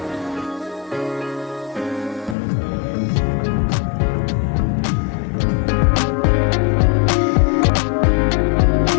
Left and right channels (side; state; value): right; drops out; at 2.4 s